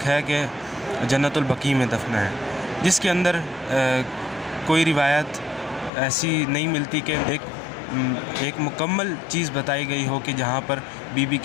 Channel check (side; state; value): right; drops out; at 5.9 s